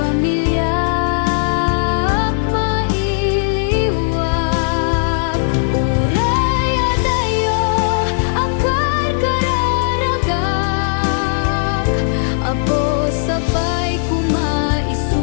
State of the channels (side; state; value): right; silent; 68 dB below the other